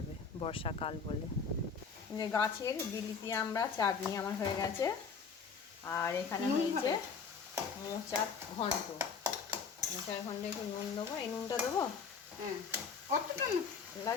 বর্ষাকাল বলে। যে গাছের বিলিতি আমরা চাটনি আমার হয়ে গেছে, আর এখানে হয়েছে মোচার ঘন্ট। মোচার ঘন্টে একটু নুন দেবো, এই নুনটা দেবো। হ্যাঁ, কতটা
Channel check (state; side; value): quieter; right; 5.6 dB